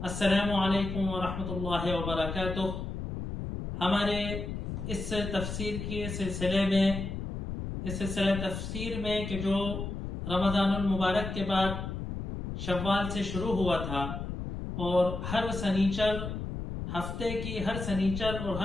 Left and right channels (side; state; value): left; noise; rumble, 5 dB below the sound